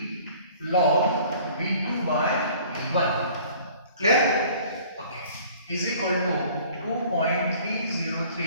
log V2 by V1। Clear? Okay, is equal to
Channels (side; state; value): both; inverted; correlation -0.51